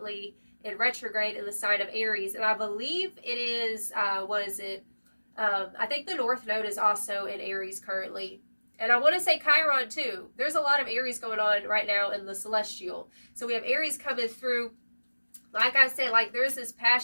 in retrograde in the sign of Aries. And I believe it is, what is it? I think the North Node is also in Aries currently. And I want to say Chiron too. There's a lot of Aries going on right now in the celestial. So we have Aries coming through. Like I said, like there's this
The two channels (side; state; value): both; inverted; correlation -1.00